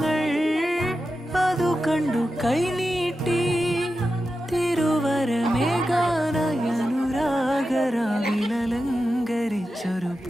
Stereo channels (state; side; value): normal; both; correlation 0.91